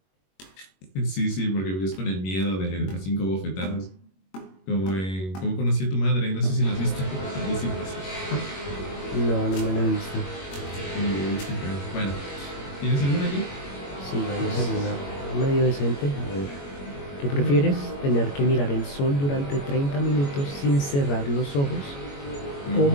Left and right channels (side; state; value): right; late; 21 ms